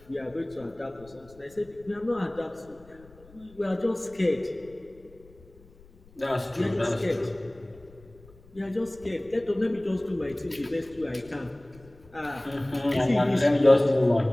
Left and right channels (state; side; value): noise; left; rumble, 25 dB below the sound